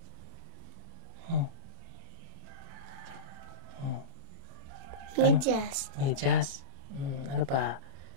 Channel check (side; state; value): left; late; 30 ms